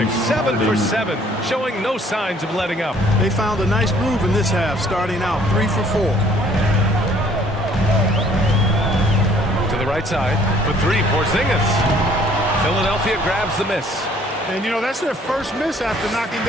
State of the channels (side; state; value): both; normal; correlation 0.58